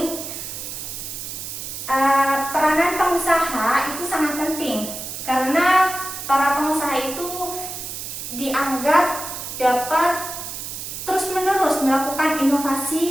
peranan pengusaha itu sangat penting karena para pengusaha itu dianggap dapat terus-menerus melakukan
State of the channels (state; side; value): noise; right; hiss, 8 dB below the sound